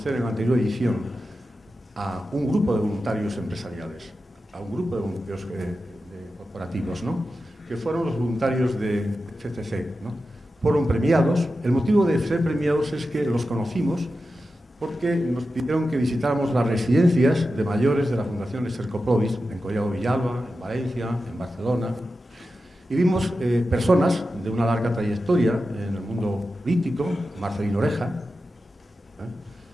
en la anterior edición a un grupo de voluntarios empresariales, a un grupo de voluntarios corporativos, ¿no? Que fueron los voluntarios de FCC, ¿no? Fueron premiados. El motivo de ser premiados es que los conocimos porque nos pidieron que visitáramos las residencias de mayores de la Fundación Estercoprodis, en Collado Villalba, en Valencia, en Barcelona, y vimos personas de una larga trayectoria en el mundo político, Marcelino Oreja,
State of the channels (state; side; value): normal; both; correlation 0.92